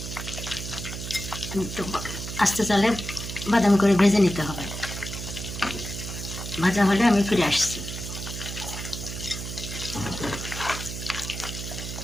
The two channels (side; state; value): right; noise; hum, 7 dB below the sound